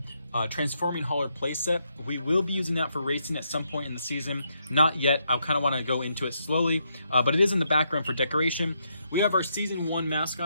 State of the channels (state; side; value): inverted; both; correlation -0.78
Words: Transforming Hauler playset. We will be using that for racing at some point in the season. Not yet. I kind of want to go into it slowly, but it is in the background for decoration. We have our Season 1